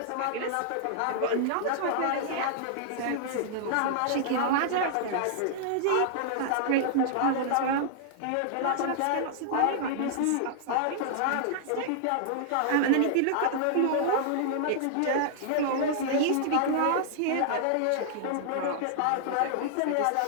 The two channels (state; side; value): different; both; correlation -0.01